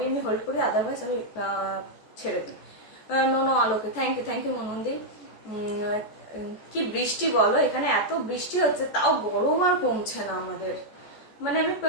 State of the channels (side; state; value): right; late; 14 ms